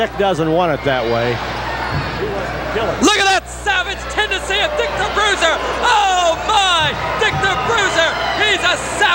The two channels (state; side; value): identical; both; correlation 1.00